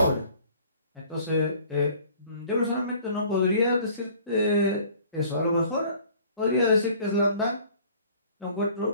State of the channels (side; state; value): both; inverted; correlation -0.52